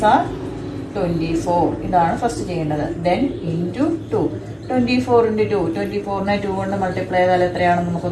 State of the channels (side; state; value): both; identical; correlation 1.00